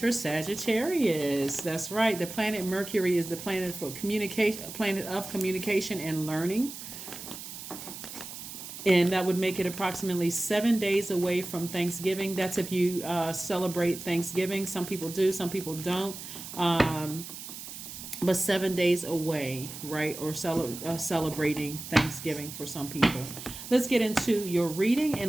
Sagittarius. That's right. The planet Mercury is the planet for communication, planet of communication and learning. And that would make it approximately 7 days away from Thanksgiving. That's if you celebrate Thanksgiving. Some people do, some people don't. But 7 days away, right? Or celebrating Thanksgiving for some people. Let's get into your reading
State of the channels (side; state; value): right; noise; hiss, 11 dB below the sound